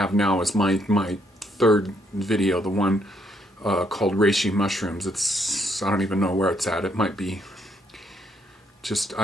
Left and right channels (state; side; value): normal; both; correlation 0.72